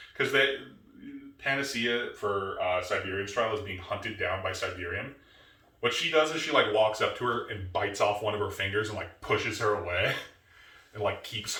Because Panacea for Siberian's trial is being hunted down by Siberian. What she does is she like walks up to her and bites off one of her fingers and like pushes her away and like keeps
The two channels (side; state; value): both; identical; correlation 1.00